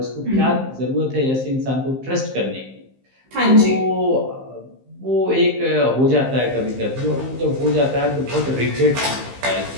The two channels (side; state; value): left; late; 15 ms